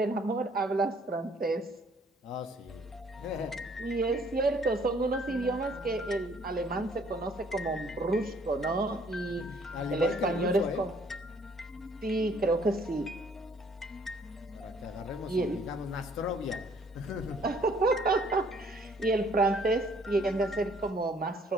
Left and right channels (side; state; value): both; normal; correlation 0.61